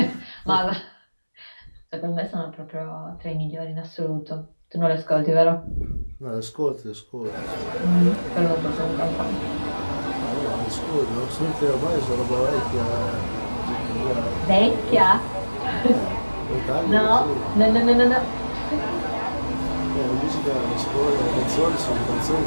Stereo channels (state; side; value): inverted; both; correlation -1.00